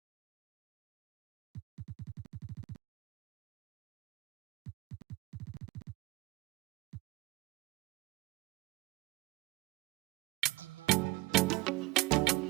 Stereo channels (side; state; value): left; quieter; 21.3 dB